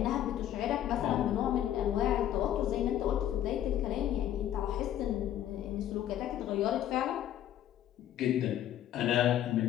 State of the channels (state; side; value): quieter; right; 11.5 dB